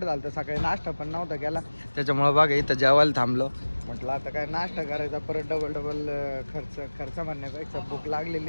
झालं तर सकाळी नाश्ता पण नव्हता केला त्याच्यामुळे बघा इथं जेवायला थांबलो. म्हटलं आता काय नाश्ता करायचा परत डबल खर्च म्हणण्यापेक्षा भूक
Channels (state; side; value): inverted; both; correlation -1.00